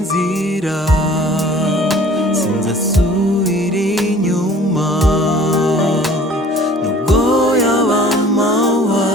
sinzasubira inyuma, nubwo yaba amahwa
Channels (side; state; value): both; normal; correlation 0.49